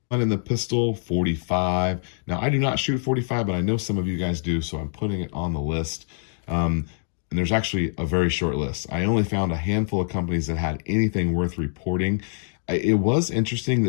And in the pistol, 45. Now, I do not shoot 45, but I know some of you guys do, so I'm putting it on the list. And there's actually a very short list. I only found a handful of companies that had anything worth reporting. It was interesting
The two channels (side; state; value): right; silent; digital silence